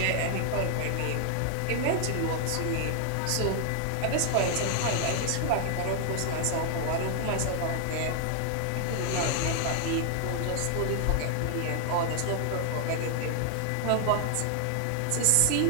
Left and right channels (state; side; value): different; both; correlation 0.00